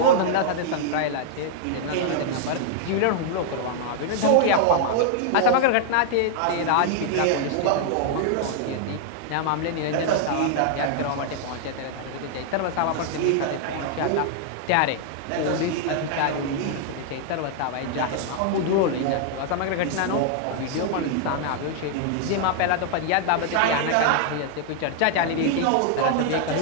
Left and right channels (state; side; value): different; both; correlation 0.00